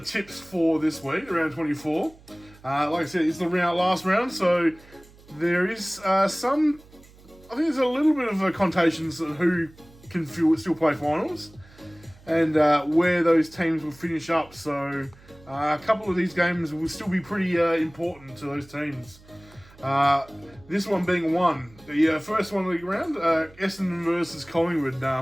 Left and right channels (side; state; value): right; noise; hum, 25 dB below the sound